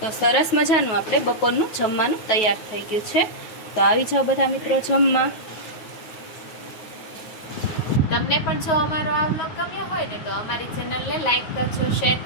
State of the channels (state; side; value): late; right; 9.4 ms